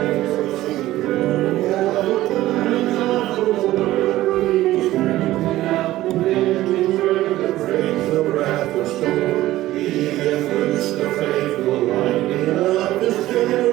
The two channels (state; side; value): quieter; left; 15.7 dB